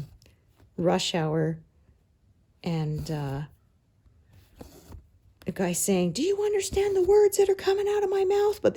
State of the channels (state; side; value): identical; both; correlation 1.00